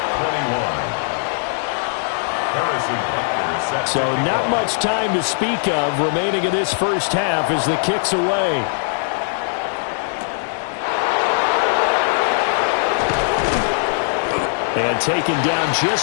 21. Harrison Butker set So to not kick much time to speak of remaining in this first half as the kick's away. And taken down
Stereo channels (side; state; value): right; silent; digital silence